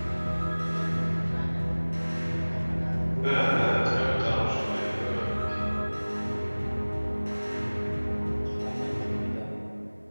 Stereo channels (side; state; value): both; inverted; correlation -1.00